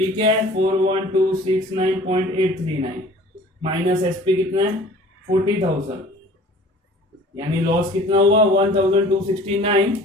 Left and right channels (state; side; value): normal; both; correlation 0.47